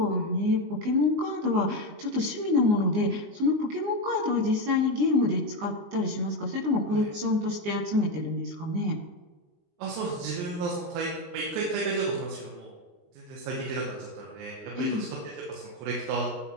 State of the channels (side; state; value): left; late; 19 ms